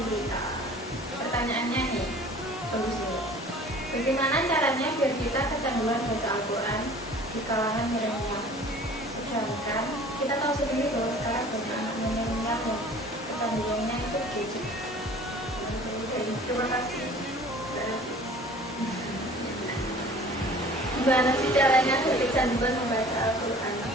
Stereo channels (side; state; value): both; normal; correlation 0.47